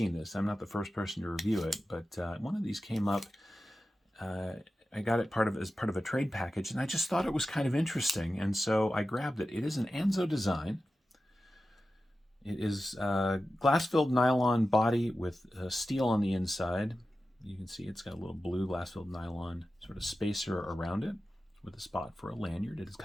this. I'm not the first person to review it, but one of these came up. I got it as part of a trade package, and I just thought it was kind of interesting, and so I grabbed it. It is an Anzo design. It is a glass-filled nylon body with steel on the inside. You can see it's got a little blue glass-filled nylon sort of spacer around it with a spot for a lanyard. It has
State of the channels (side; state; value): both; normal; correlation 0.93